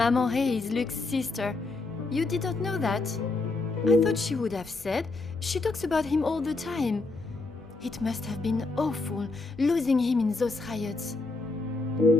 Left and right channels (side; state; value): right; quieter; 3.5 dB